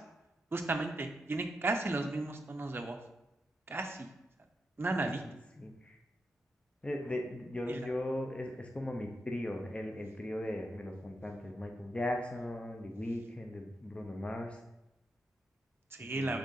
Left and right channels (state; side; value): normal; both; correlation 0.85